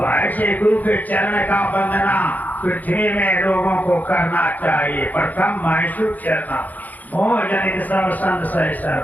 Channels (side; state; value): right; late; 0.081 ms